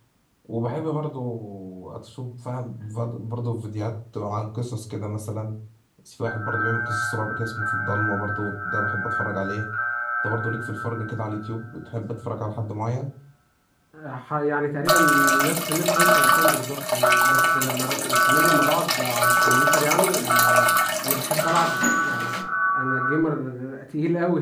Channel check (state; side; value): identical; both; correlation 1.00